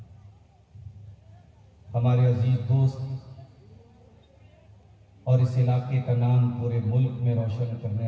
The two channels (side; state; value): both; identical; correlation 1.00